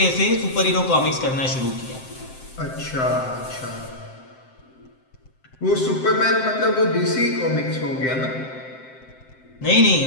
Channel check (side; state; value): right; late; 7.7 ms